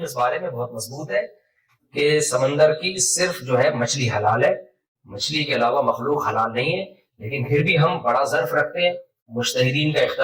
اس بارے میں بہت مضبوط ہے کہ سمندر کی صرف جو ہے مچھلی حلال ہے، مچھلی کے علاوہ مخلوق حلال نہیں ہے. لیکن پھر بھی ہم بڑا ظرف رکھتے ہیں، مجتہدین کا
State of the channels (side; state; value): both; identical; correlation 1.00